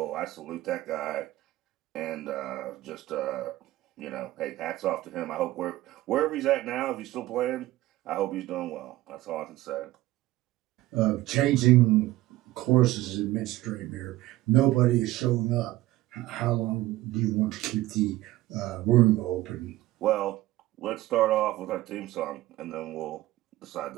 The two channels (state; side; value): quieter; left; 16.8 dB